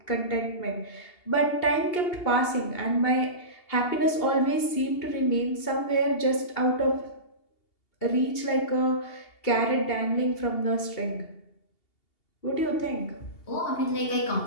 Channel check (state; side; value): late; right; 2.8 ms